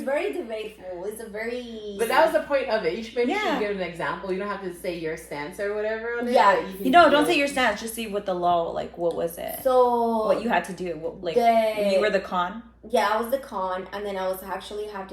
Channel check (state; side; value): identical; both; correlation 1.00